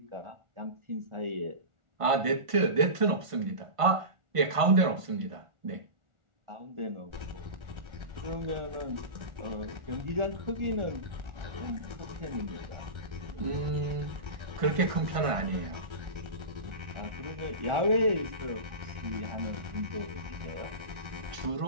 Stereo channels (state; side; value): late; left; 1.5 ms